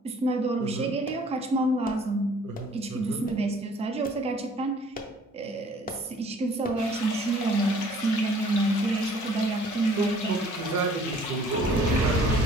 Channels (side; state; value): both; normal; correlation 0.55